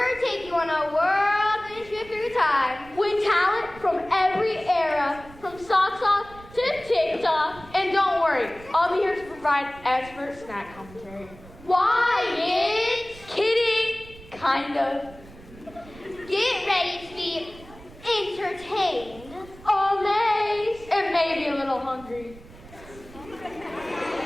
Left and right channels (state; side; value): noise; right; rumble, 20 dB below the sound